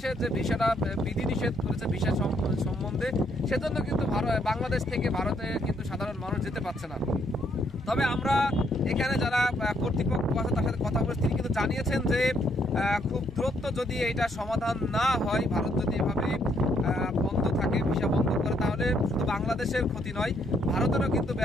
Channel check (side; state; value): both; normal; correlation 0.71